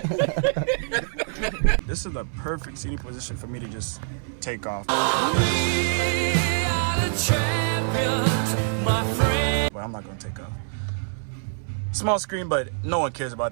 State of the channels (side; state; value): left; silent; 62 dB below the other